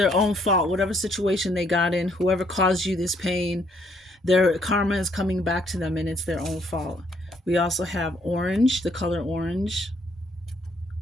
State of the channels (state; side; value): normal; both; correlation 0.68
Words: own fault. Whatever situation they got in, whoever caused you this pain, their karma is coming back to them, and it's their own fault. We also have orange, the color orange,